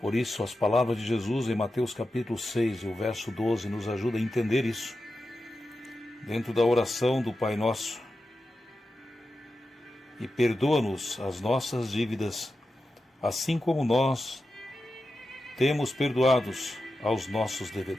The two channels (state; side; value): normal; both; correlation 0.91